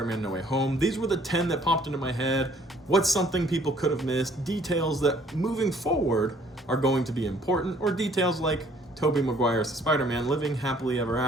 No Way Home. These were the 10 that popped into my head. What's something people could have missed? Details that moving forward are going to be important, or details like Tobey Maguire's Spider-Man living happily ever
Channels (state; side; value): normal; both; correlation 0.60